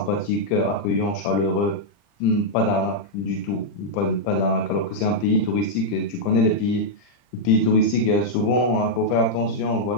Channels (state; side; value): late; right; 40 ms